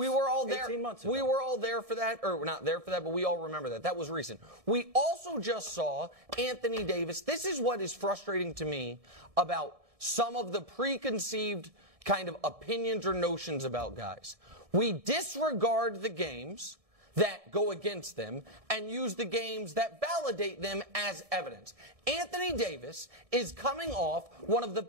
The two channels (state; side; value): late; left; 1.7 ms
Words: were all there. 18 months ago. We were all there for that, or not there for that, but we all remember that. That was recent. We also just saw Anthony Davis. This is what is frustrating to me about some of the preconceived kind of opinions or notions about guys. We disregard the games that go against them and use the games that validate them as evidence. Anthony Davis is coming off one of the